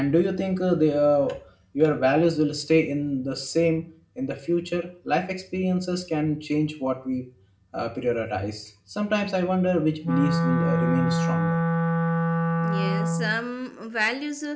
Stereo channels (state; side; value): identical; both; correlation 1.00